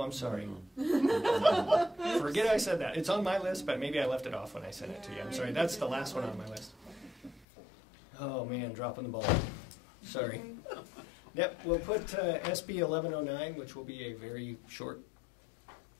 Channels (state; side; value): drops out; right; at 7.5 s